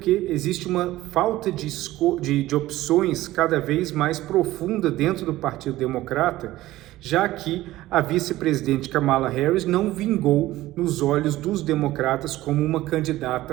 existe uma falta de opções cada vez mais profunda dentro do Partido Democrata, já que a vice-presidente Kamala Harris não vingou nos olhos dos democratas como uma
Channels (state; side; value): quieter; left; 16.4 dB